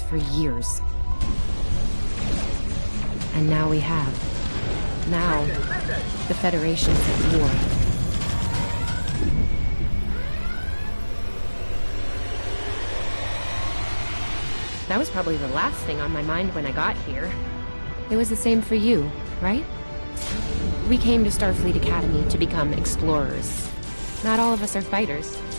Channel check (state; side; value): inverted; both; correlation -1.00